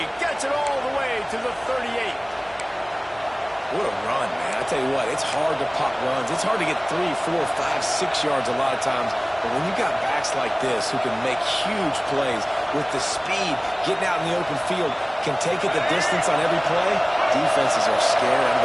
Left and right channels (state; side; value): identical; both; correlation 1.00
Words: Gets it all the way to the 38. What a run, man. I tell you what, it's hard to pop runs. It's hard to get 3, 4, 5, 6 yards a lot of times. But when you got backs like this who can make huge plays with the speed, getting out in the open field, can take it the distance on every play, defenses are scared and